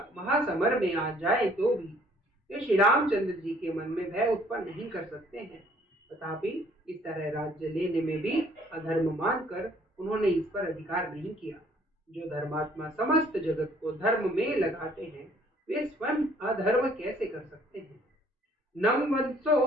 में आ जाए तो भी वे श्री रामचंद्र जी के मन में भय उत्पन्न नहीं कर सकते हैं। तथापि इस तरह राज्य लेने में भी अधर्म मानकर उन्होंने इस पर अधिकार नहीं किया। जो धर्मात्मा समस्त जगत को धर्म में लगाते हैं, वे स्वयं अधर्म कैसे कर सकते हैं? नम वंशो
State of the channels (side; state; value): both; normal; correlation 0.60